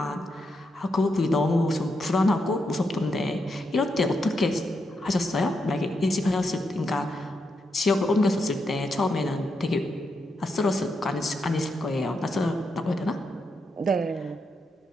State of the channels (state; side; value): normal; both; correlation 0.83